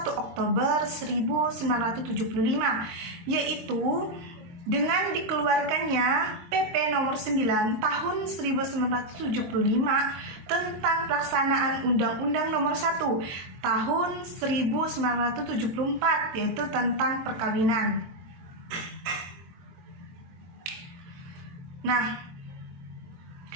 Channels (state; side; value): late; left; 23 ms